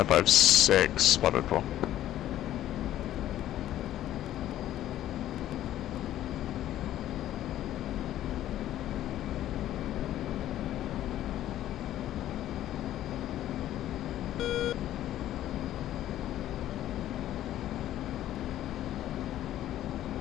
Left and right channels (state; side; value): quieter; right; 12.8 dB